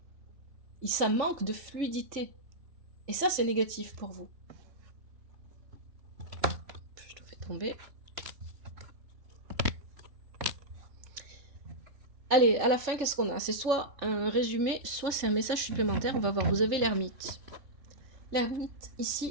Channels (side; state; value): left; late; 3.5 ms